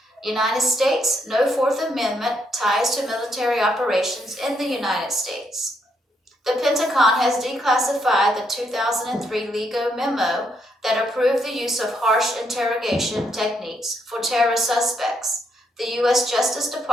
United States, no Fourth Amendment ties to military operations in the United States. The Pentagon has declassified the 2003 LEGO memo that approved the use of harsh interrogation techniques for terrorist suspects. The U.S. Justice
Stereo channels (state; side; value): normal; both; correlation 0.75